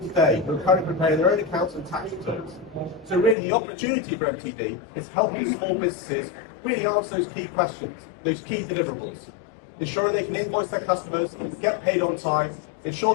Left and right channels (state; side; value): drops out; right; at 3.4 s